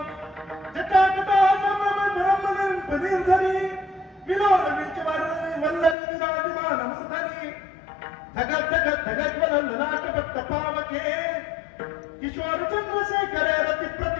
जटाकटा ब्रह्मनं पदीर्धनी विलोल विचवारणी वल्लरी विराजमान मूर्धनी धगत धगत धगत वलन ललाटपट्ट पावके किशोर चंद्रशेखर रति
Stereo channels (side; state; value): right; drops out; at 6.0 s